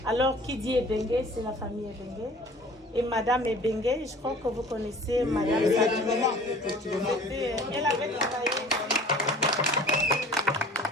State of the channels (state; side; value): normal; both; correlation 0.47